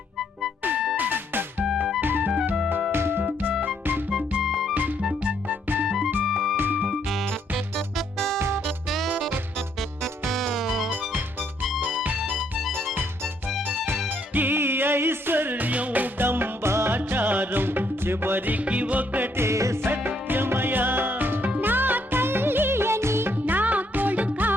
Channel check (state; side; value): normal; both; correlation 0.71